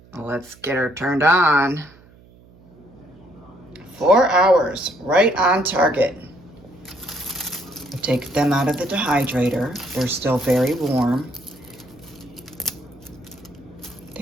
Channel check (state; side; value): noise; right; hum, 26 dB below the sound